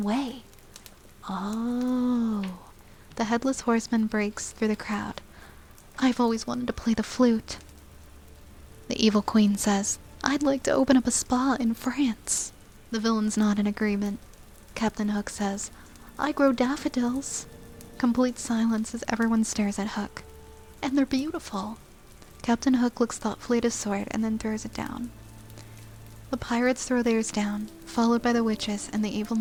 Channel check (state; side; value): identical; both; correlation 1.00